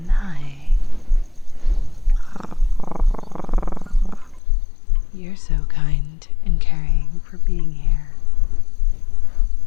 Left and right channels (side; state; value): right; drops out; at 4.4 s